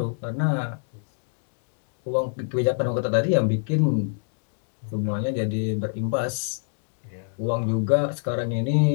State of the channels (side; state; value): right; silent; digital silence